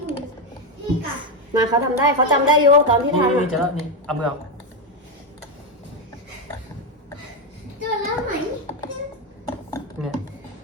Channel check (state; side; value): normal; both; correlation 0.07